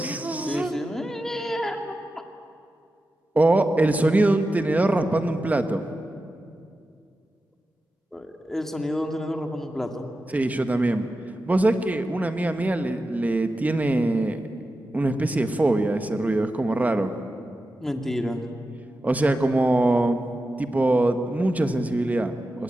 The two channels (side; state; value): both; normal; correlation 0.91